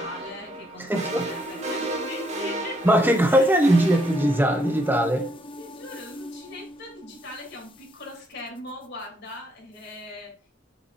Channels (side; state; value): both; normal; correlation 0.73